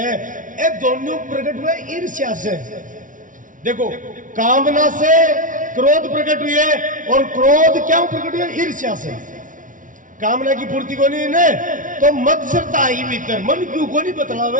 ये दोनों प्रकट हुए ईर्ष्या से। देखो कामना से क्रोध प्रकट हुई है और क्रोध क्यों प्रकट हुआ? ईर्ष्या से। कामना की पूर्ति को नहीं ने तो मत्सरता ही भीतर मन क्यों को नहीं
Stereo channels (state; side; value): late; left; 0.38 ms